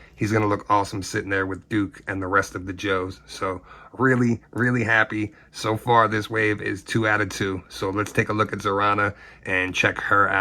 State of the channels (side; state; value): both; identical; correlation 1.00